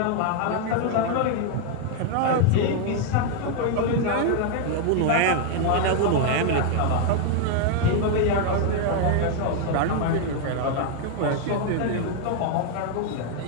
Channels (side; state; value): both; different; correlation 0.00